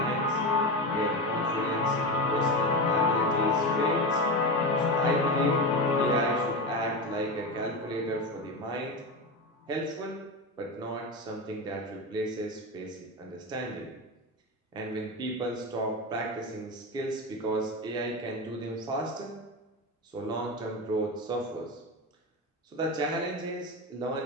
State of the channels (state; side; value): normal; both; correlation 0.19